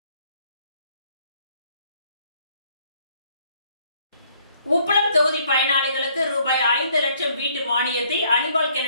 உப்பளம் தொகுதி பயனாளிகளுக்கு ரூபாய் 5 லட்சம் வீட்டு மானியத்தை அனிபால்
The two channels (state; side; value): inverted; both; correlation -0.64